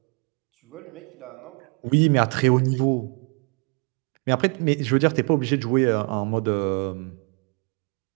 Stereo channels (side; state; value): left; quieter; 36.0 dB